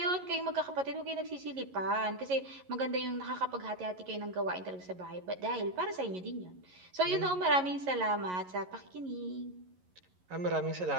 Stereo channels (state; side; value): late; left; 11 ms